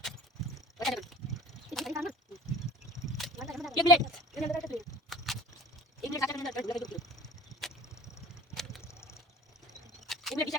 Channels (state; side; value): normal; both; correlation 0.43